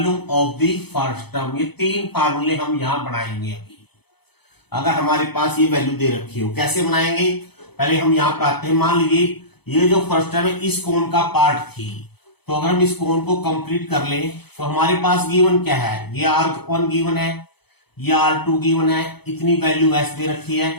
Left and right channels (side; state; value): right; late; 0.98 ms